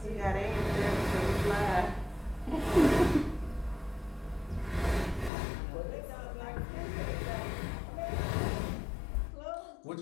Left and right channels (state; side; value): drops out; right; at 5.3 s